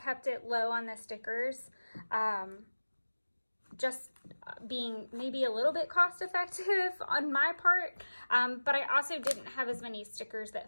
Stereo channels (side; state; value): both; inverted; correlation -1.00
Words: it low on the stickers. Just being maybe a little bit cost effective on my part. But I also didn't have as many stickers